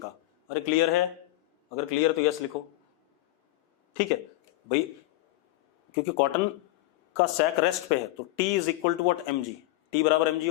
अरे क्लियर है, अगर क्लियर तो यस लिखो, ठीक है भाई, क्योंकि कॉटन का सैक रेस्ट पे है, तो T is equal to what, mg। T बराबर mg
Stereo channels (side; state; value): right; quieter; 17.8 dB